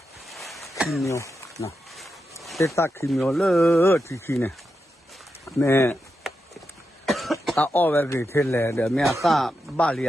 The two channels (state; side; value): normal; both; correlation 0.87